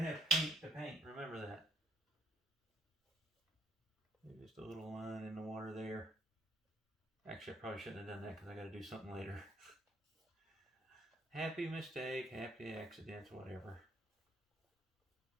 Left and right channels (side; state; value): both; normal; correlation 0.68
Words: have paint to paint. Remember that. Just a little line in the water there. Actually, I probably shouldn't have done that because I gotta do something later. Happy mistake, happy accidents, whatever.